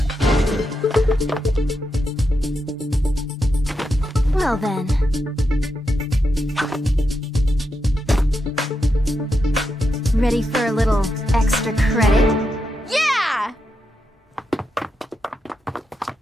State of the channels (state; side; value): normal; both; correlation 0.85